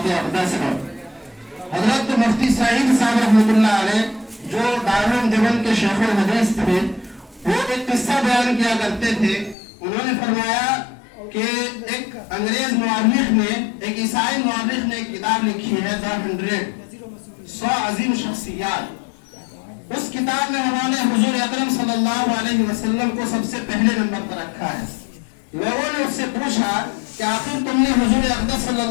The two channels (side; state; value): right; drops out; at 9.6 s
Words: اقدس ہے۔ حضرت مفتی سعید صاحب رحمۃ اللہ علیہ جو دارالعلوم دیوبند کے شیخ الحدیث تھے، وہ ایک قصہ بیان کیا کرتے تھے۔ انہوں نے فرمایا کہ ایک انگریز مورخ نے، ایک عیسائی مورخ نے ایک کتاب لکھی ہے The 100 عظیم شخصیات۔ اس کتاب میں انہوں نے حضور اکرم صلی اللہ علیہ وسلم کو سب سے پہلے نمبر پر رکھا ہے۔ لوگوں نے اس سے پوچھا کہ آخر تم نے حضور اقدس صلی